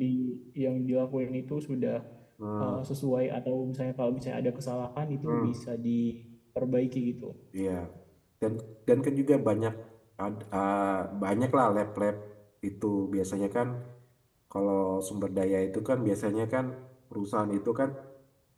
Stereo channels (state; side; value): identical; both; correlation 1.00